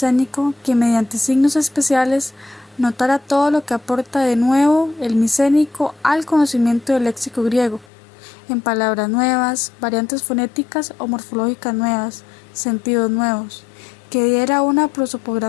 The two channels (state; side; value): drops out; right; at 7.9 s